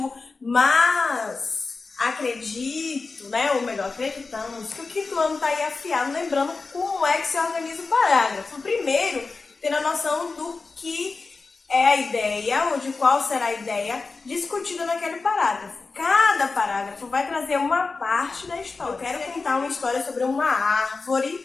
mas acredito, né, ou melhor, acreditamos que o quinto ano tá aí afiado, lembrando como é que se organiza o parágrafo. Primeiro, tendo a noção do que é a ideia, ou de qual será a ideia discutida naquele parágrafo. Cada parágrafo vai trazer uma parte da história. Eu quero contar uma história sobre uma árvore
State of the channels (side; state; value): right; quieter; 4.1 dB